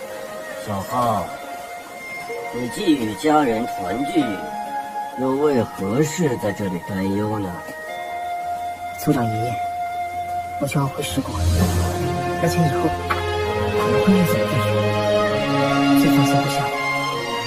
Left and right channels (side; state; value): both; identical; correlation 1.00